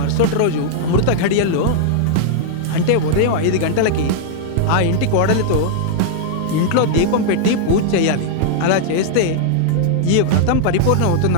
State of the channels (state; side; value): different; both; correlation -0.01